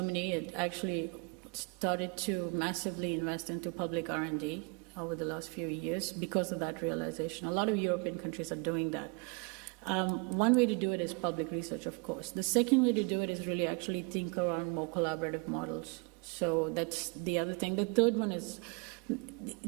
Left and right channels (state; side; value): quieter; left; 31.0 dB